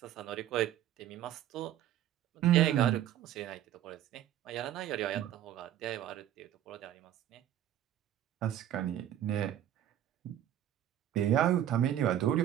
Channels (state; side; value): quieter; left; 11.6 dB